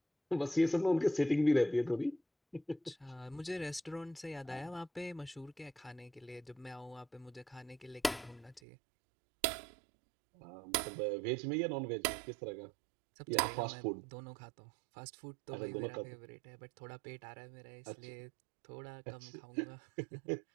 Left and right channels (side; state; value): left; drops out; at 8.6 s